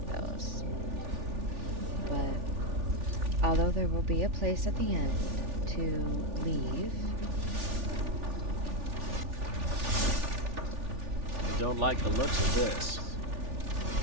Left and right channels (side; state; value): left; late; 3.4 ms